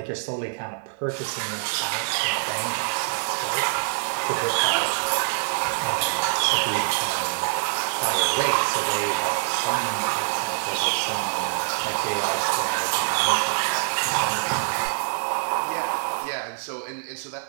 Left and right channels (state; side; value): silent; left; 61 dB below the other